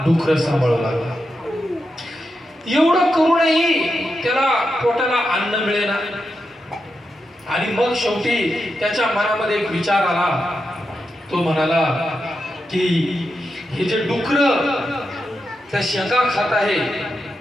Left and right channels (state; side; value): normal; both; correlation 0.87